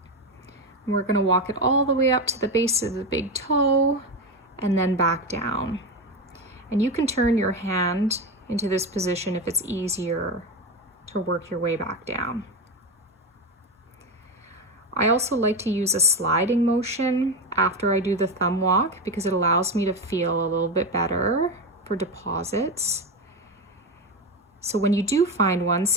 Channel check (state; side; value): normal; both; correlation 0.16